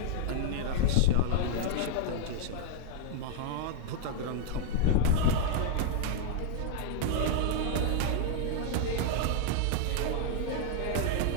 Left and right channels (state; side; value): different; both; correlation 0.00